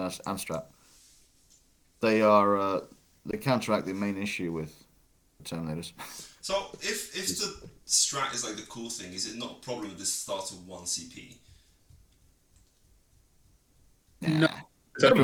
strat, they counteract the main issue with Terminators. So if the strat is like the cool thing, is it not a problem if this starts with 1 CP? No.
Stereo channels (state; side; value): identical; both; correlation 1.00